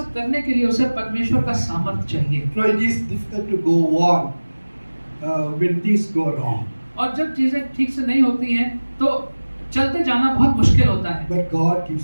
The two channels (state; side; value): inverted; both; correlation -1.00